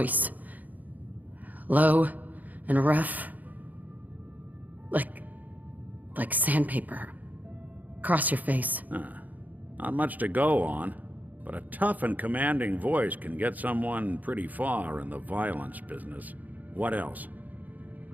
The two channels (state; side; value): late; left; 0.080 ms